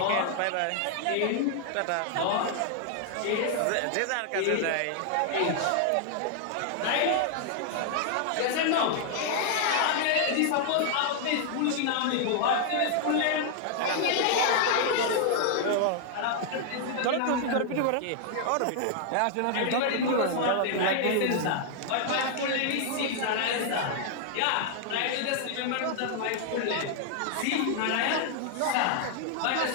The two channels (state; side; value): different; both; correlation 0.00